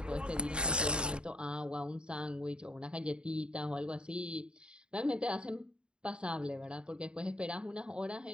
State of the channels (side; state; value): left; late; 0.052 ms